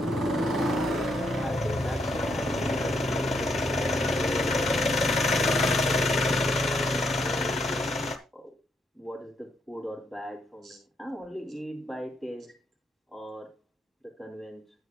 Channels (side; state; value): both; normal; correlation 0.77